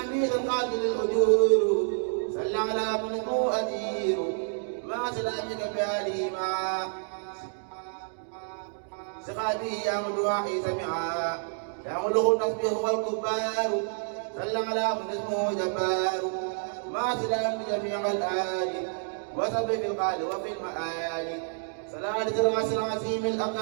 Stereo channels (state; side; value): silent; left; digital silence